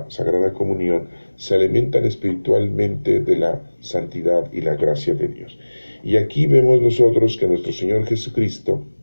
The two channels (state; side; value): inverted; both; correlation -1.00